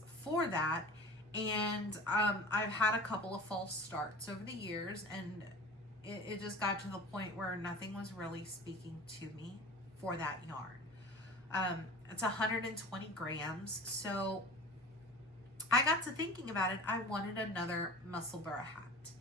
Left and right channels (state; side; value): normal; both; correlation 0.39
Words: for that. And I've had a couple of false starts over the years, and it just got to the point where nothing was really speaking to me for that yarn. It's 120 grams. So I got to thinking about it. I wanted another Musselburgh hat.